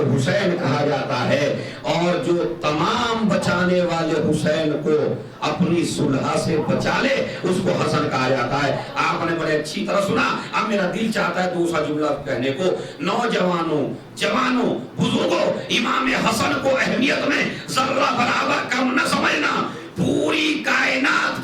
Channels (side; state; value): both; identical; correlation 1.00